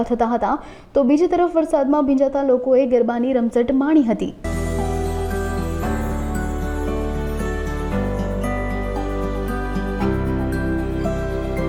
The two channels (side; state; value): both; identical; correlation 1.00